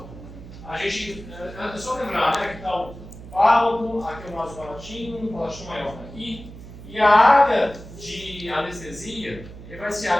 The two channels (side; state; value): right; noise; hum, 15 dB below the sound